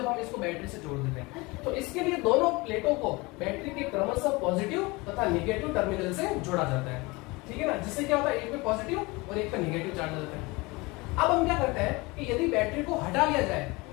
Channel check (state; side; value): quieter; right; 24.3 dB